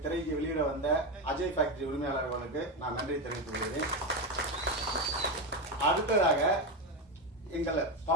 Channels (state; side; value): normal; both; correlation 0.13